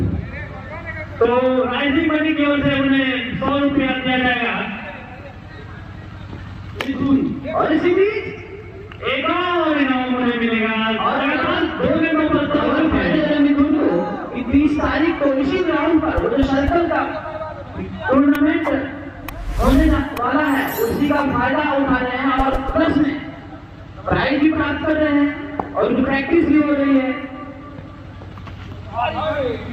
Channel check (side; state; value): both; identical; correlation 1.00